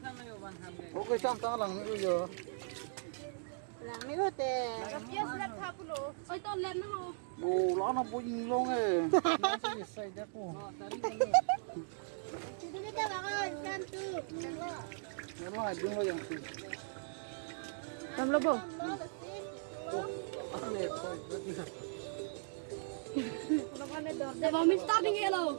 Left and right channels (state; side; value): silent; left; digital silence